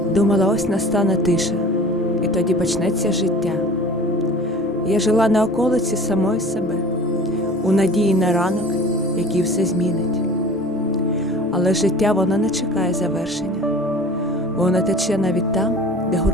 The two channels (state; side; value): normal; both; correlation 0.43